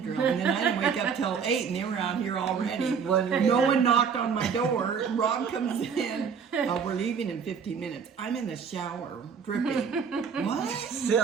And then I didn't wake up till 8 and they were out here already. Wondering- No one knocked on my door. Rob comes in. We're leaving in 15 minutes. I'm in the shower, dripping. What?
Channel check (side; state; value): left; quieter; 6.4 dB